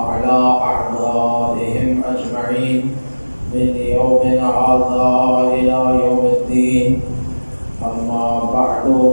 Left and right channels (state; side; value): inverted; both; correlation -1.00